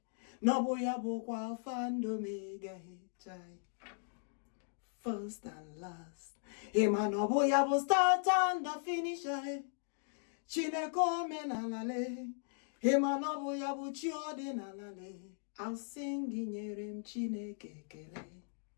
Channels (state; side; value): silent; right; digital silence